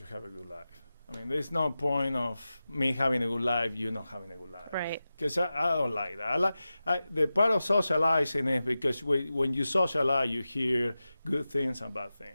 have a good life. I mean, there's no point of me having a good life, you not having a good life. Right. Because I don't like that. The part of socializing is because when you socialize, you hear good things and bad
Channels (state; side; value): inverted; both; correlation -0.94